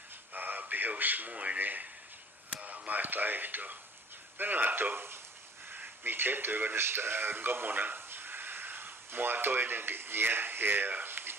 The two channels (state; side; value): normal; both; correlation 0.52